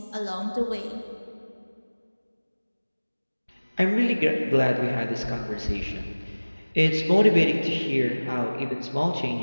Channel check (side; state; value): both; inverted; correlation -1.00